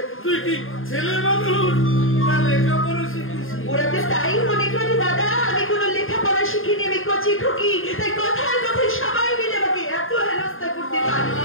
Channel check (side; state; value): right; late; 0.59 ms